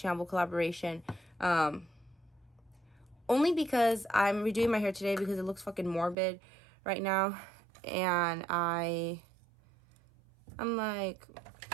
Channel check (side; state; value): left; drops out; at 6.2 s